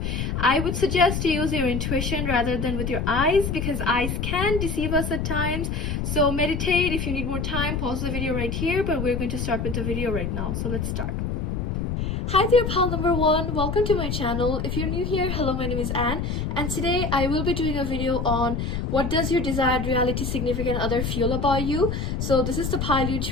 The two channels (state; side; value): noise; left; rumble, 2 dB below the sound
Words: I would suggest to use your intuition rather than with your eyes, because eyes can deceive us at times. So meditate. If you need more time, pause the video right here, but we're going to start with the video right now, so let's start. Hi there, pal number one. Welcome to my channel. If you're new here, hello, my name is Anne, and today I will be doing a video on what does your desired reality significant other feel about you. So this is the pile you